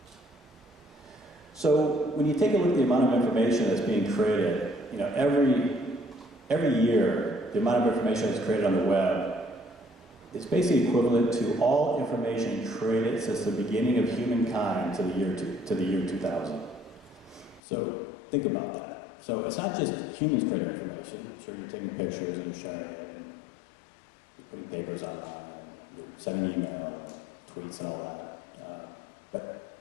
So when you take a look at the amount of information that's being created, every year, the amount of information that's created on the web is basically equivalent to all information created since the beginning of humankind to the year 2000. So think about that. So it's not just humans creating information. Sure, you're taking pictures and you're sharing it, and you're putting papers online, and you're sending email and tweets and all that.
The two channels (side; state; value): right; drops out; at 17.6 s